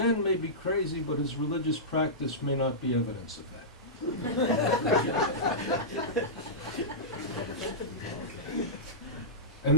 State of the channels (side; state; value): both; normal; correlation -0.15